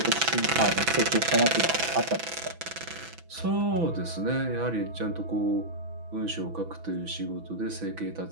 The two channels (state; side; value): late; left; 6.0 ms